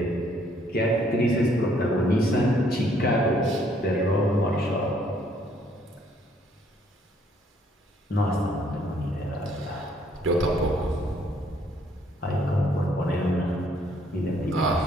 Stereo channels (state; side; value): normal; both; correlation 0.66